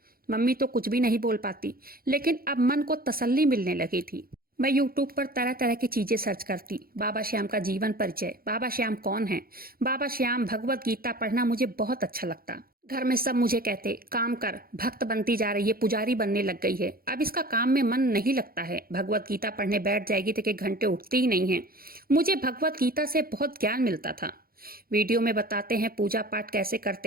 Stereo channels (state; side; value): late; left; 0.43 ms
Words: मम्मी तो कुछ भी नहीं बोल पाती, लेकिन अब मन को तसल्ली मिलने लगी थी। मैं यूट्यूब पर तरह तरह की चीजें सर्च करती। बाबा श्याम का जीवन परिचय, बाबा श्याम कौन है, बाबा श्याम, भगवत गीता पढ़ना मुझे बहुत अच्छा लगता। घर में सब मुझे कहते, काम कर, भक्त बनती जा रही है, पुजारी बनने लग गई है, अब इसका काम में मन नहीं लगता है, भगवत गीता पढ़ने बैठ जाएगी तो एक घंटे उठती ही नहीं है। मुझे भगवत गीता से बहुत ज्ञान मिलता था। वीडियो में बताते हैं पूजा पाठ कैसे